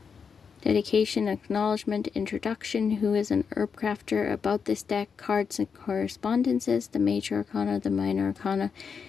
Dedication, acknowledgement, introduction, who is an Herbcrafter, about this deck, cards and correspondences, the major arcana, the minor arcana,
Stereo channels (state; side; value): quieter; right; 6.1 dB